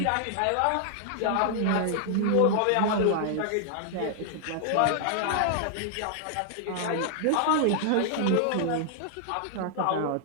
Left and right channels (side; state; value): both; different; correlation 0.00